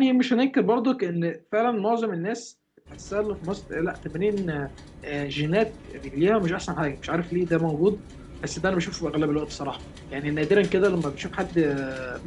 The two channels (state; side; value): identical; both; correlation 1.00